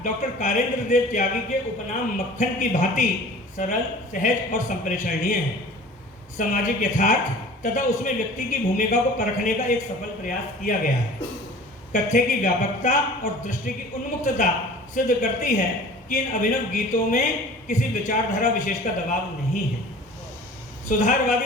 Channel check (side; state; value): both; normal; correlation 0.44